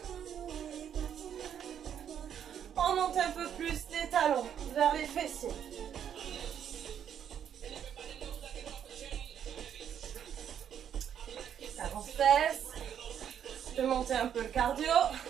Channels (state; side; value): quieter; left; 9.0 dB